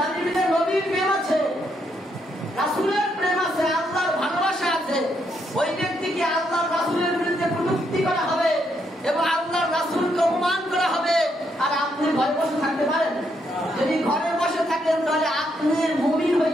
ভিতরে নবীর প্রেম আছে, রাসূলের প্রেম আছে, আল্লাহর ভালোবাসা আছে, ওই ব্যক্তিকে আল্লাহর রাসূলের বিরুদ্ধে কটূক্তি করা হবে এবং আল্লাহর রাসূলকে অপমান করা হবে। আর আপনি ঘরে বসে থাকতে পারেন? যদি ঘরে বসে থাকেন তাহলে আপনি মুমিন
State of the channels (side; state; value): both; normal; correlation 0.76